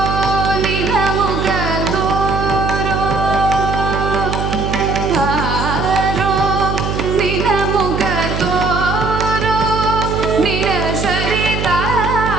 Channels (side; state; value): right; noise; hum, 3 dB below the sound